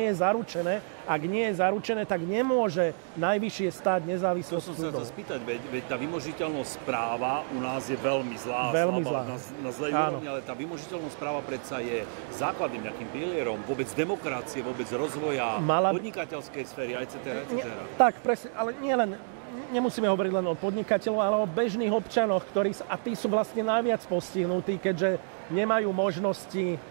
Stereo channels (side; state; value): left; silent; digital silence